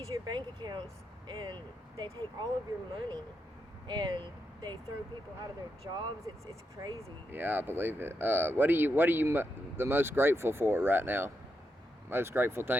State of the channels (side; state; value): both; normal; correlation 0.84